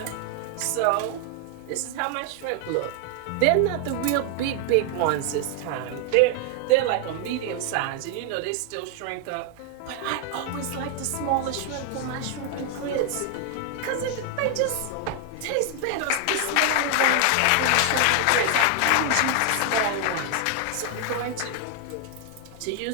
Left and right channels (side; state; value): both; different; correlation 0.00